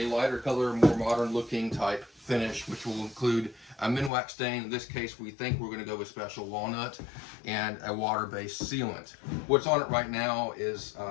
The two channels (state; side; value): drops out; right; at 4.1 s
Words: lighter color, more modern looking type finish, which will include a Minwax stain. In this case, we think we're going to go with special walnut and a water-based sealant. What's on it right now is